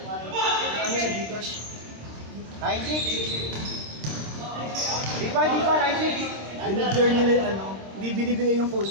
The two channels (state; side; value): late; left; 26 ms